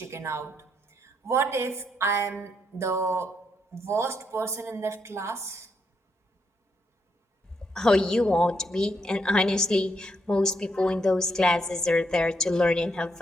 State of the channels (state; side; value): normal; both; correlation 0.77